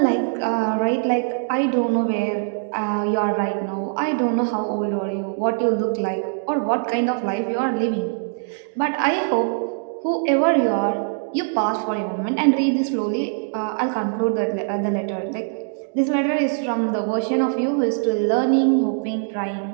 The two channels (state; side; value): silent; left; digital silence